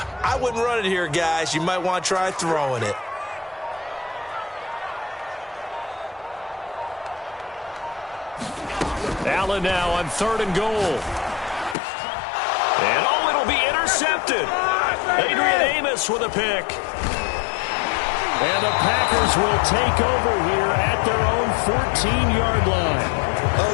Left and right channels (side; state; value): right; drops out; at 11.8 s